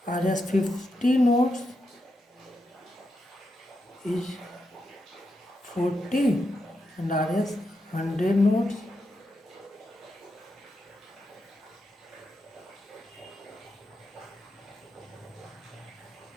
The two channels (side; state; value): both; normal; correlation 0.85